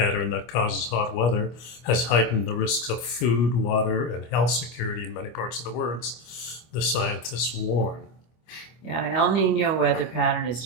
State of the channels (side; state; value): right; late; 25 ms